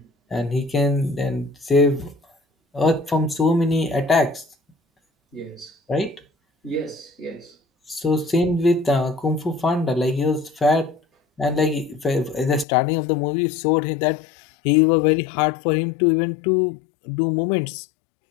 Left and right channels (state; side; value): drops out; right; at 12.7 s